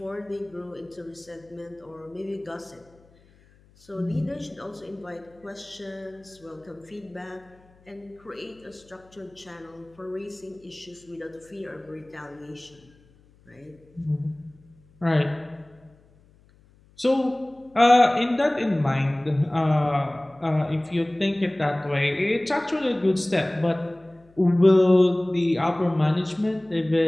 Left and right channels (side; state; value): left; noise; hum, 29 dB below the sound